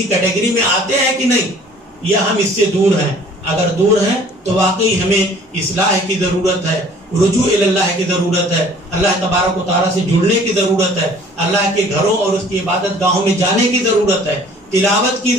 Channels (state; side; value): normal; both; correlation 0.52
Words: کیٹیگری میں آتے ہیں کہ نہیں، یا ہم اس سے دور ہیں۔ اگر دور ہیں تو واقعی ہمیں اصلاح کی ضرورت ہے، رجوع اللہ کی ضرورت ہے، اللہ تبارک و تعالیٰ سے جڑنے کی ضرورت ہے، اللہ کے گھروں اور اس کی عبادت گاہوں میں جانے کی ضرورت ہے، تلاوت کی